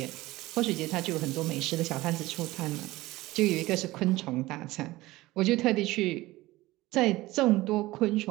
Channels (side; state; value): left; quieter; 18.6 dB